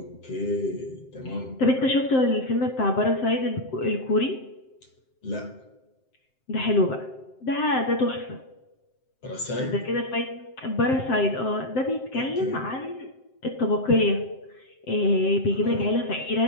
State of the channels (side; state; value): right; late; 7.7 ms